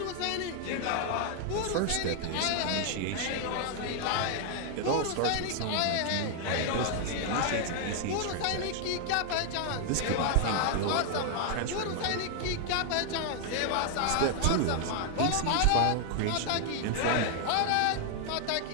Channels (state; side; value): different; both; correlation 0.00